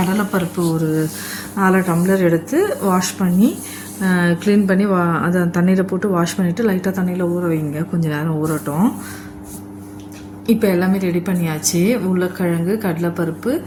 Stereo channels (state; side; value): identical; both; correlation 1.00